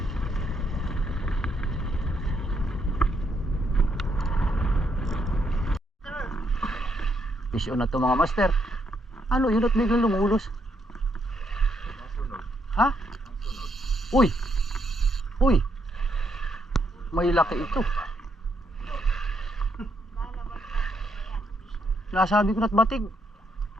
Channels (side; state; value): both; normal; correlation 0.76